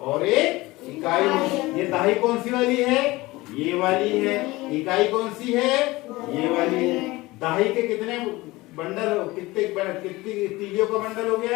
एक इकाई होगी। ये दाही कौन सी वाली है? ये वाली है। इकाई कौन सी है? ये वाली है। दाही के कितने बंडल, कितनी तीलियों का बंडल हो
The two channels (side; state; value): right; quieter; 20.3 dB